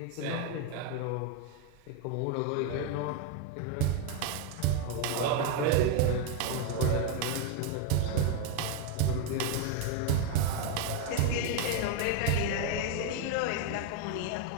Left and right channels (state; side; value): different; both; correlation 0.01